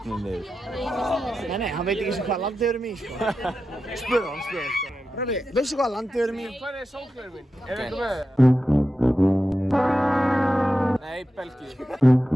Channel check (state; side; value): normal; both; correlation 0.90